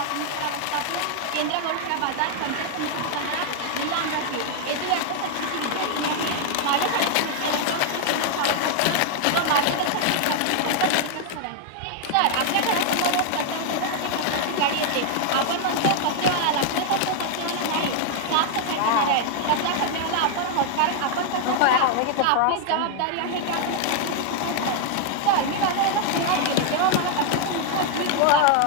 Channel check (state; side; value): different; both; correlation 0.00